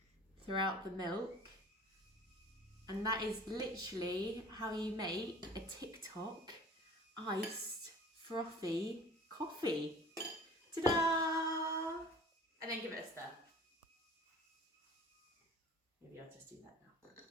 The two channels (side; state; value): both; normal; correlation 0.44